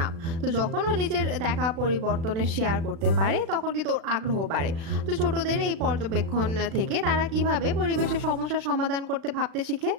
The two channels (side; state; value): left; late; 36 ms